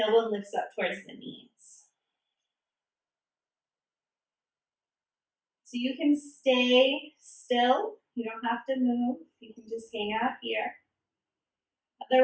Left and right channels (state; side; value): identical; both; correlation 1.00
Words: lifts up towards the knees. So you can stay still. You don't have to move. You can just hang out here.